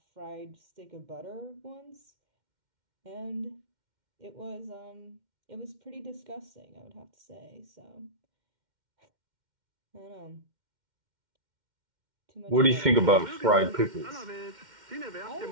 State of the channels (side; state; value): left; late; 2.1 ms